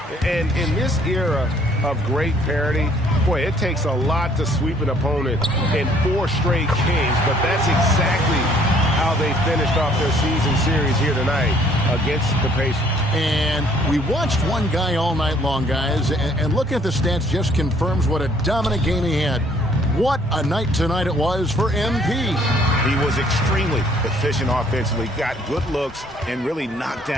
And in this era of great parity, boy, it takes a lot to sweep an opponent in 4 straight games. But that's exactly how they finished off their season series here tonight against the Pacers. And we watched one guy all night long, guys, and looking at the stats just confirms what a dominant game he had. What a night tonight it was for MP. He was extremely efficient offensively, got good looks, and really knocked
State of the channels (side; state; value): both; normal; correlation 0.61